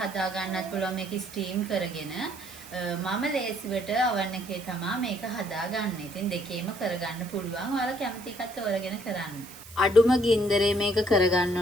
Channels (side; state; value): right; noise; hiss, 17 dB below the sound